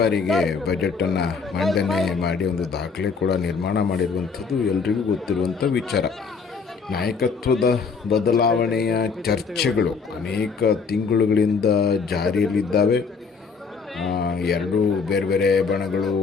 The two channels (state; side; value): quieter; right; 5.1 dB